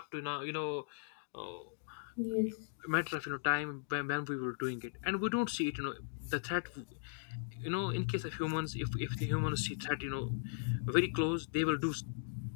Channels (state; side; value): silent; right; digital silence